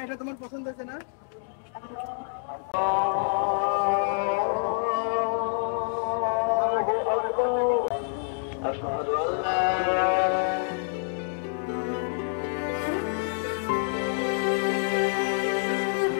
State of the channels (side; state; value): right; silent; digital silence